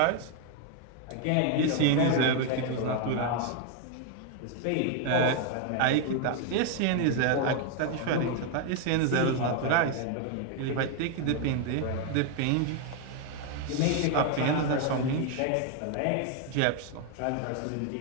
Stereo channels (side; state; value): both; different; correlation 0.01